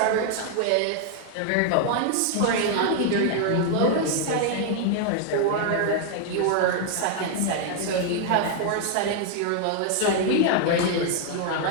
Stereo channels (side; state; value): both; different; correlation 0.00